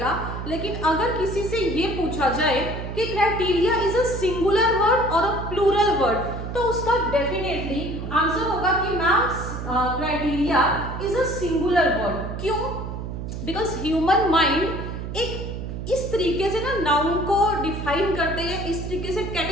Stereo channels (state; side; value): noise; right; hum, 6 dB below the sound